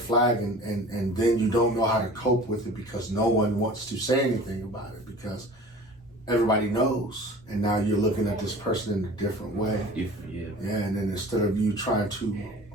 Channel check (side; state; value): both; normal; correlation 0.42